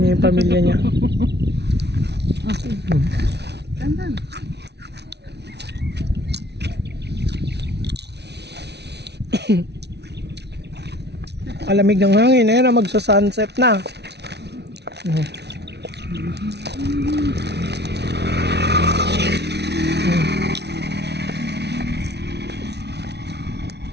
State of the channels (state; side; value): late; left; 0.49 ms